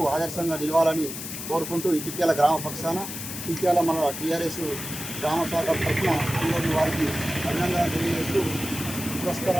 ఆదర్శంగా నిలవాలని కోరుకుంటూ ఇటిక్యాల గ్రామ పక్షాన ఇటిక్యాల మన టీఆర్ఎస్ గ్రామ శాఖ తరఫున ఈరోజు వారికి అభినందనలు తెలియజేస్తూ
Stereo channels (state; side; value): noise; left; hiss, 8 dB below the sound